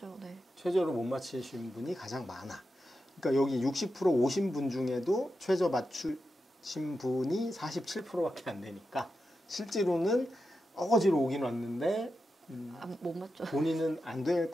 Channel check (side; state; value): both; normal; correlation 0.89